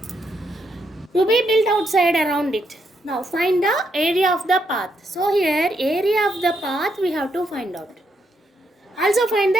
to be built outside around it. Now find the area of the path. So here area of the path we have to find out. Also find the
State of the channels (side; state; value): both; normal; correlation 0.78